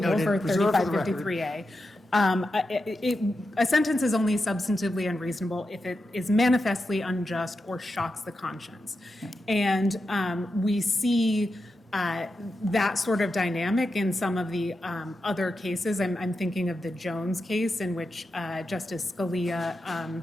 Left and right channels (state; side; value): normal; both; correlation 0.89